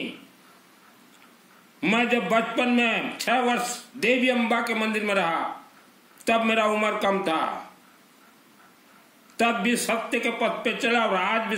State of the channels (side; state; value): both; identical; correlation 1.00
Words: मैं जब बचपन में 6 वर्ष देवी अम्बा के मंदिर में रहा, तब मेरा उम्र कम था, तब भी सत्य के पथ पे चला और आज भी